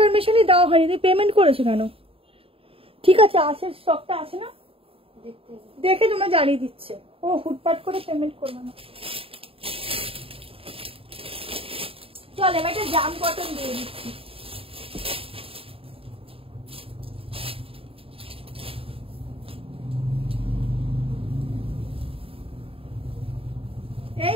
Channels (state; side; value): late; left; 0.27 ms